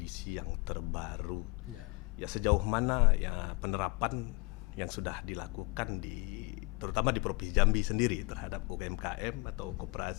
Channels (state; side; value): quieter; right; 26.3 dB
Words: yang terbaru. Ya. Ya, sejauh mana ya penerapan yang sudah dilakukan terutama di Provinsi Jambi sendiri terhadap UMKM atau